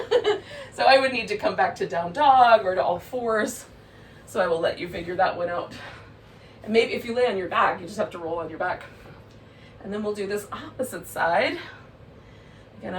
So I would need to come back to down dog or to all fours. So I will let you figure that one out. And maybe if you lay on your back, you just have to roll on your back. And then we'll do this opposite side. Again,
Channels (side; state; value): both; identical; correlation 1.00